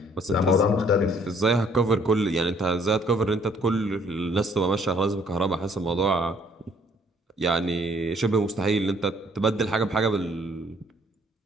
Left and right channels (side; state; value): both; normal; correlation 0.62